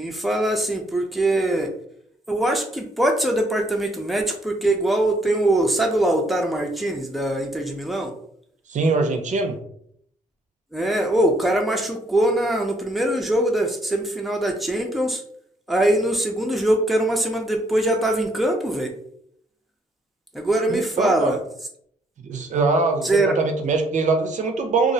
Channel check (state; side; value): normal; both; correlation 0.68